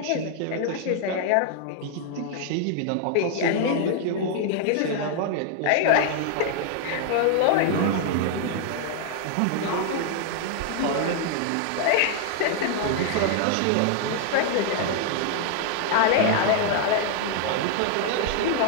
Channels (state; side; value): different; both; correlation 0.00